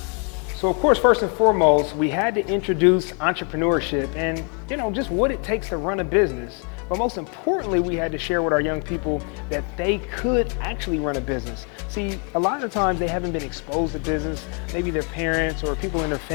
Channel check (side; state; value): right; quieter; 38.8 dB